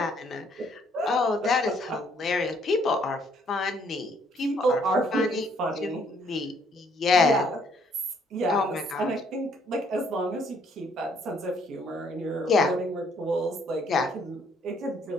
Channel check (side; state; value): both; normal; correlation 0.66